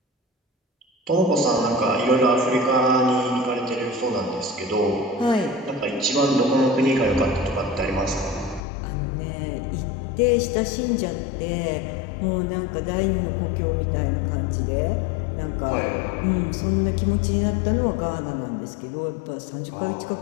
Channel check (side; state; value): right; drops out; at 8.6 s